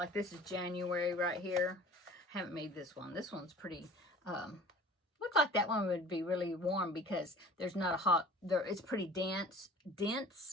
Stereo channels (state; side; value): normal; both; correlation 0.46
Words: this is January right here. I haven't made this one. This one's pretty, look like that one would be really warm, because there's not a hot, it's pretty dense,